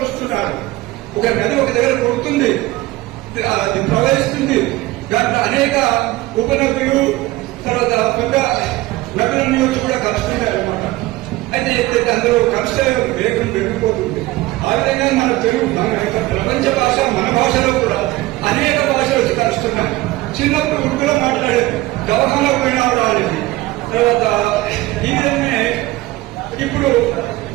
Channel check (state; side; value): quieter; left; 18.5 dB